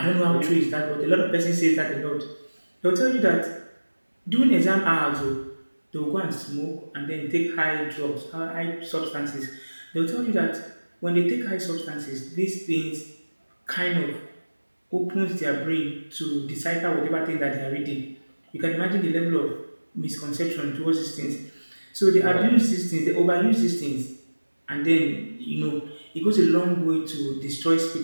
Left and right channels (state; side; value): inverted; both; correlation -1.00